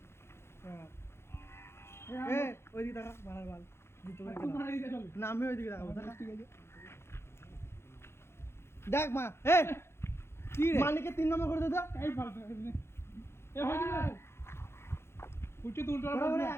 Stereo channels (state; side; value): late; right; 0.12 ms